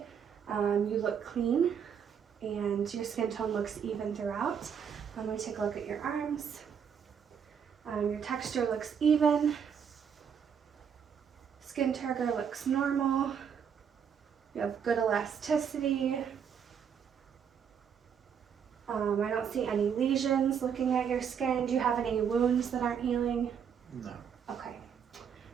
You look clean, and your skin tone looks even throughout. I'm going to take a look at your arms. Your texture looks even. Skin turgor looks normal. You have good elasticity. I don't see any lesions looking at your skin. Do you have any wounds that aren't healing? No. Okay.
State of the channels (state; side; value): quieter; left; 7.5 dB